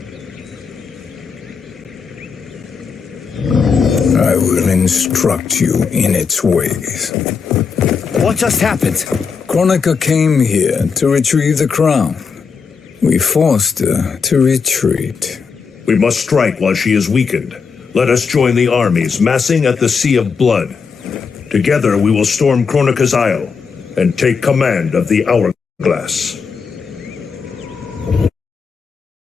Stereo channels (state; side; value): quieter; right; 5.6 dB